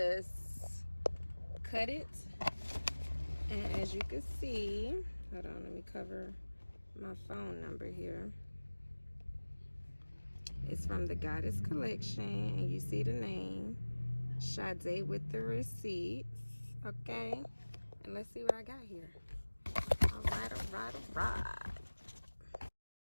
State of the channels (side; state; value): both; inverted; correlation -1.00